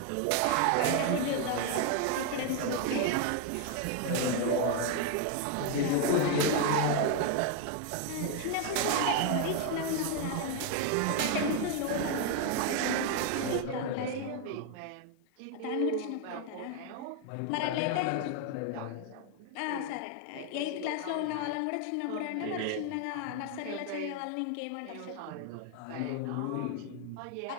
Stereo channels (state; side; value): different; both; correlation 0.01